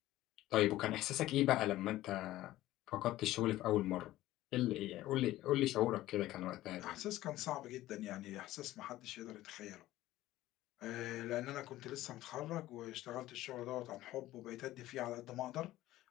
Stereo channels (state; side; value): quieter; right; 15.7 dB